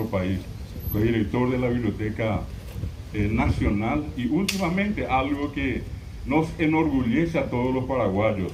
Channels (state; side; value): identical; both; correlation 1.00